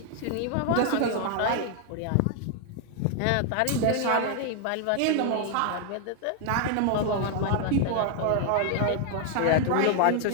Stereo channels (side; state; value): both; different; correlation 0.00